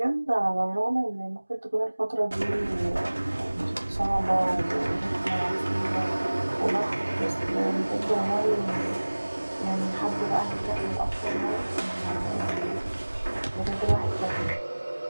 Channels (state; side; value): inverted; both; correlation -1.00